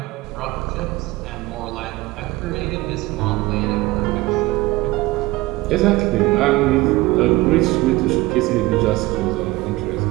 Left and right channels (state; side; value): quieter; left; 19.7 dB